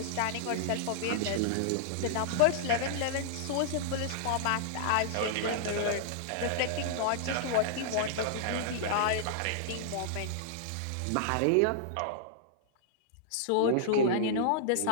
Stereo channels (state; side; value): different; both; correlation -0.02